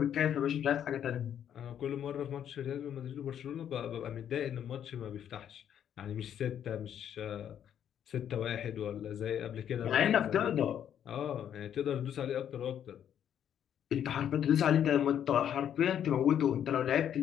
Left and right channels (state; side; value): quieter; right; 9.6 dB